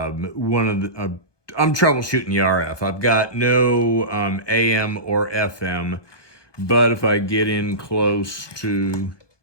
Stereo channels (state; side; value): late; right; 1.2 ms